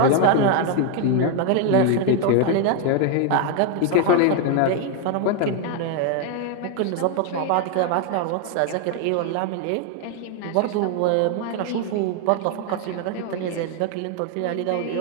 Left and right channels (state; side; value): different; both; correlation 0.01